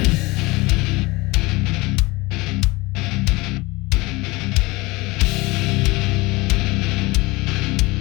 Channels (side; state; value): right; quieter; 22.8 dB